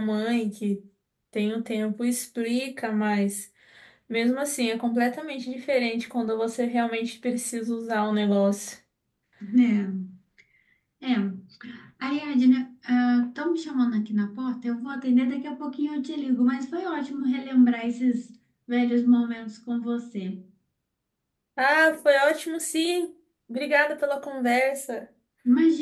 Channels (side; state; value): both; identical; correlation 1.00